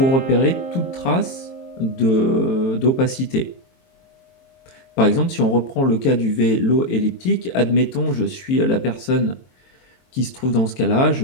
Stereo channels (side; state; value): right; late; 22 ms